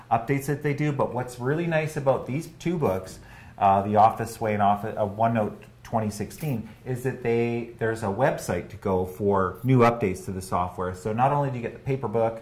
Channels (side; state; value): both; identical; correlation 1.00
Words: updates that they do, but what's really nice about these 2 books, the Office Sway and OneNote 2016, is that there's a website to go for new updates to the software. So not only do you get the paper book,